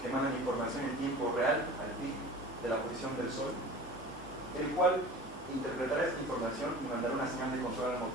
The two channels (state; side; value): normal; both; correlation 0.39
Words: mandan información en tiempo real al PIC de de la posición del Sol, el cual interpretará esta información y mandará una señal de control al